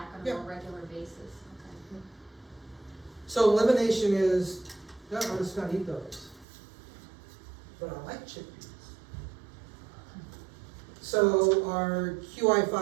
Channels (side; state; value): left; drops out; at 6.5 s